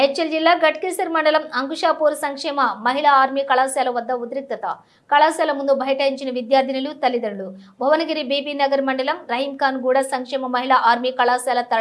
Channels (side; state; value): both; identical; correlation 1.00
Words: జిల్లా గట్కేసర్ మండలం అంకుషాపూర్ సంక్షేమ మహిళా ఆర్మీ కళాశాల వద్ద ఉద్రిక్తత. కళాశాల ముందు బైఠాయించిన విద్యార్థినులు, తల్లిదండ్రులు. భువనగిరి బీబీ నగర్ మండలం రహీంఖాన్ గూడ సంక్షేమ మహిళా ఆర్మీ కళాశాల